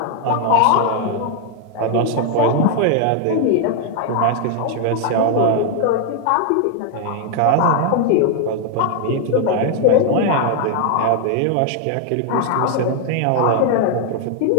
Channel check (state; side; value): different; both; correlation 0.00